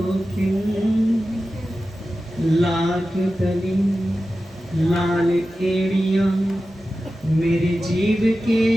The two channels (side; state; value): both; normal; correlation 0.93